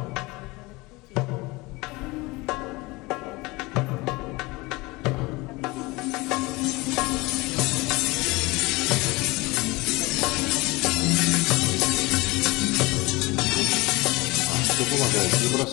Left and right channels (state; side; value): quieter; right; 23.1 dB